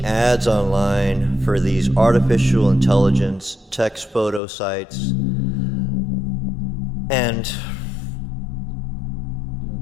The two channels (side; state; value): right; drops out; at 4.4 s